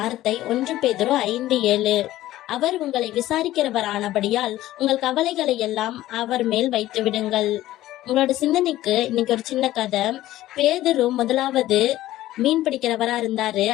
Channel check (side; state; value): right; quieter; 15.0 dB